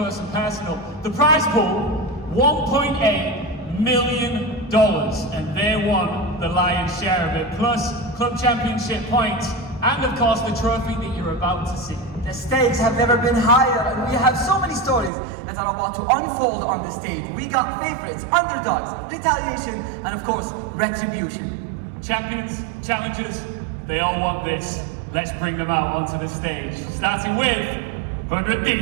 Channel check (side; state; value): left; drops out; at 15.1 s